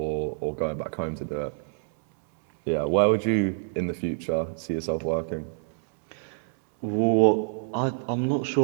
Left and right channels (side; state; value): left; silent; 60 dB below the other